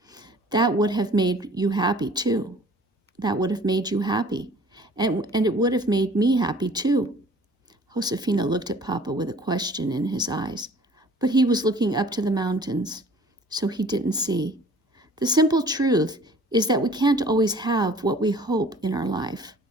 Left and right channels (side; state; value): both; normal; correlation 0.50